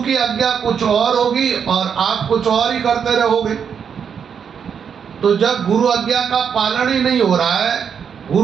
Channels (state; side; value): quieter; left; 7.2 dB